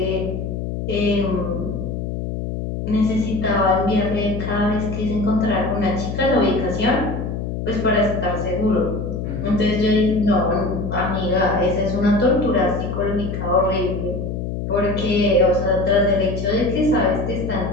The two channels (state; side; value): noise; left; hum, 4 dB below the sound